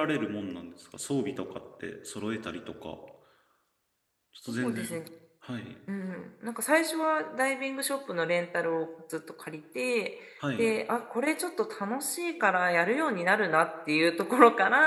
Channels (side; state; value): both; identical; correlation 1.00